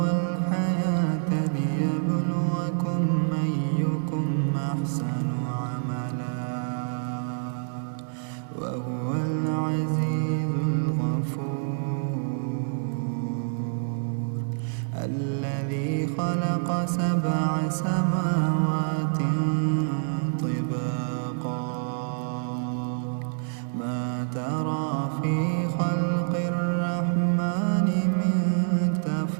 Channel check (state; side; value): silent; left; digital silence